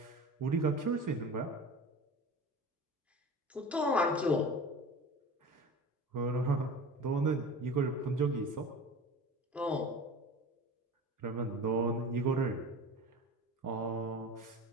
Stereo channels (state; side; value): normal; both; correlation 0.35